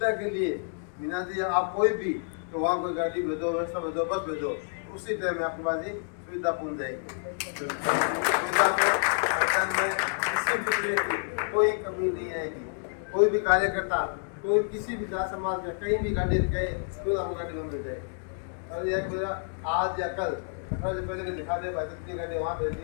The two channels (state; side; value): silent; right; 59 dB below the other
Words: के लिए बीना जी आप कोई भी तो वहाँ कोई गाड़ी भेजो, व्यवस्था भेजो, बस भेजो, उसी टाइम में आपके पास ही सुविधा पहुँच जाएगी। सुविधा में किसी भी तरह की कोई कमी नहीं आएगी। कोई भी कार्यकर्ता, कोई किसी भी जात समाज का कहीं भी गाड़ी गए तो आपको गाड़ी में मिल जाएगी। और यह मेरा आज या कल से पहले दिखा दे भाई कितनी गाड़ी वहाँ